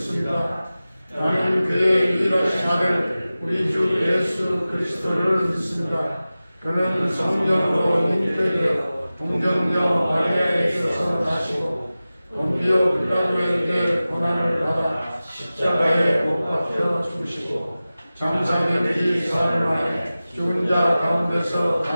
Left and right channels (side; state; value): both; inverted; correlation -0.96